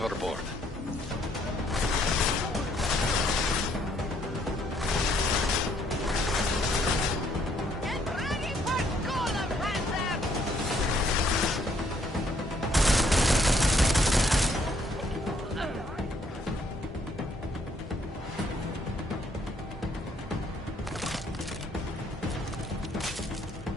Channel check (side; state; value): both; normal; correlation 0.68